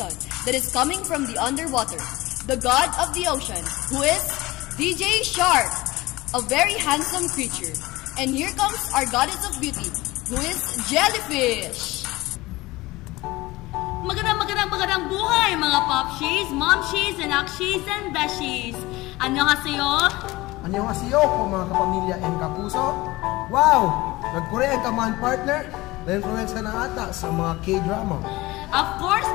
that is coming from the underwater. The god of the ocean, who is DJ Shark, a very handsome creature. And here comes our goddess of beauty, who is Jellyfish. Magandang buhay mga popshies, momshies, and akshies, and beshies. Annyeonghaseyo! Annyeonghaseyo po mga kapamilya and kapuso. Wow! Nag-Korean ka man, partner? Na-influence ka na ata sa mga K-drama. Of course,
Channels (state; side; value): quieter; right; 20.0 dB